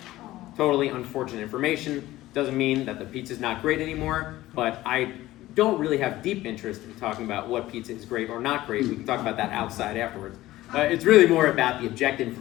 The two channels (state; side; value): quieter; right; 16.3 dB